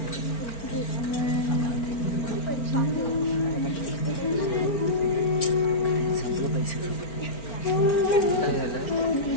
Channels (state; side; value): late; right; 4.4 ms